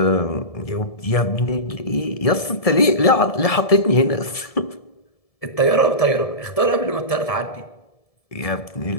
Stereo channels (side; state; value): right; late; 1.7 ms